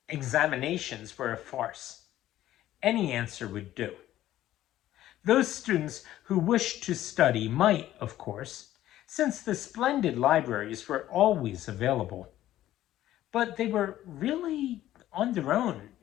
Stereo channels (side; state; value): right; quieter; 13.6 dB